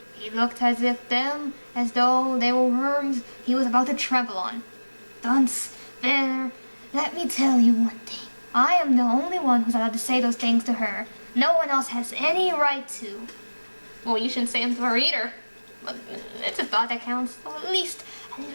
He looked as though they were worms he was about to trample on. Dunce, there, let me tell you one thing. I am the only one who's allowed to say those things to her. No one else has any right to. Well, you shouldn't say them to her either. But it's a thought that counts. So at least a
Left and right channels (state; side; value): inverted; both; correlation -1.00